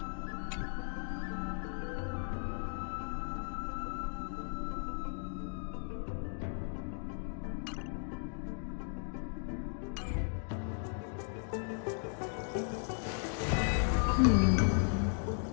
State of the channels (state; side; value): silent; right; 54 dB below the other